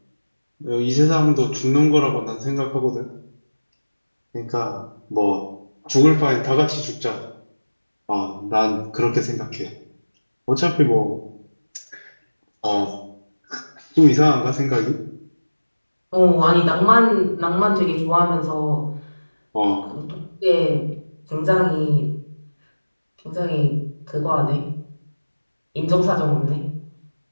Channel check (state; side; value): inverted; both; correlation -1.00